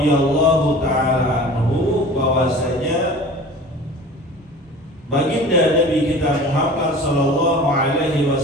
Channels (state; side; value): normal; both; correlation 0.41